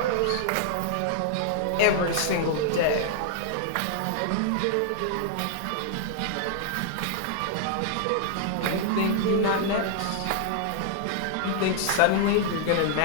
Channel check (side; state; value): both; different; correlation -0.01